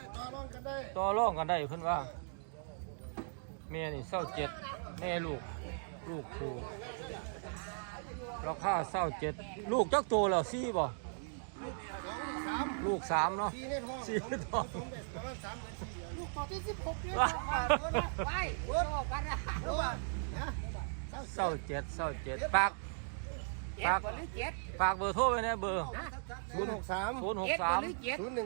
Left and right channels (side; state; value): left; silent; digital silence